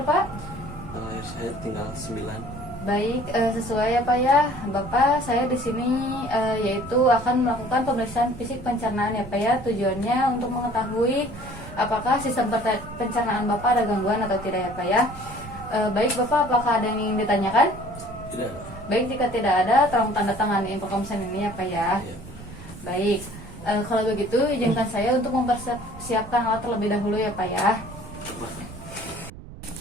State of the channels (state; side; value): noise; right; rumble, 16 dB below the sound